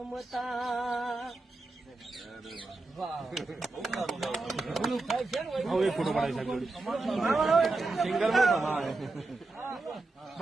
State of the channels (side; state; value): left; quieter; 3.3 dB